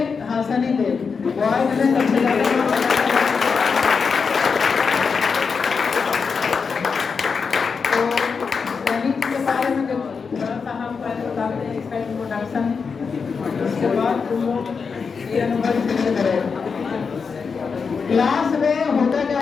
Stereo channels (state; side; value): quieter; right; 5.5 dB